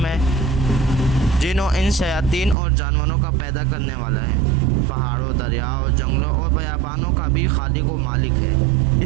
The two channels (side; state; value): left; drops out; at 2.6 s